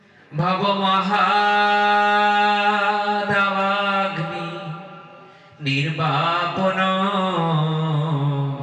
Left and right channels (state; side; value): identical; both; correlation 1.00